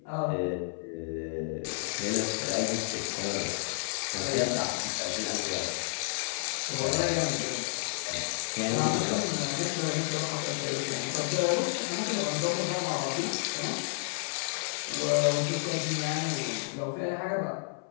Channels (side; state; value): right; silent; 57 dB below the other